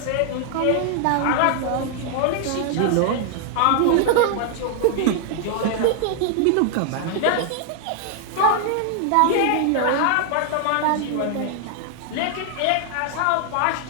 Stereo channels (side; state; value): both; different; correlation 0.00